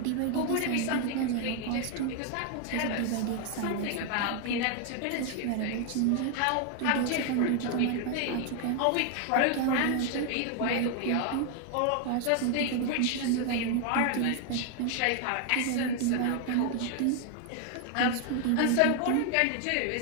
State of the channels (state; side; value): different; both; correlation 0.00